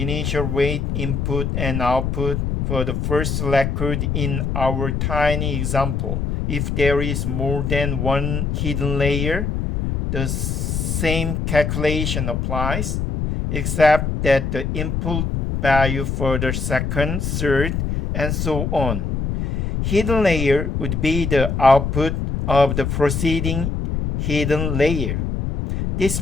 weight input and output for the first record in our tiny example. If there is more than one hidden layer, the same calculation applies, except that the input value for the second, third, and so on. Hidden layer would be the output of the preceding hidden layer. This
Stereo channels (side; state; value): left; noise; rumble, 1 dB below the sound